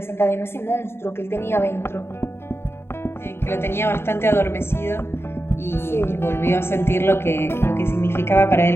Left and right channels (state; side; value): late; right; 0.12 ms